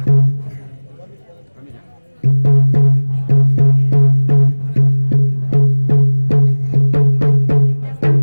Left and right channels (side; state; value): both; inverted; correlation -1.00